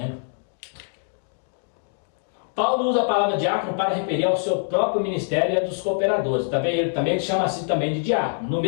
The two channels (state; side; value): silent; right; digital silence